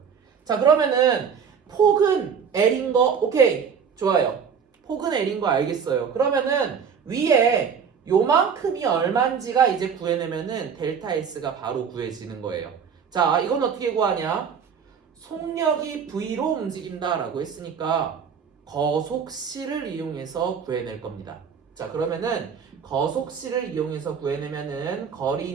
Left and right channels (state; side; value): quieter; left; 6.8 dB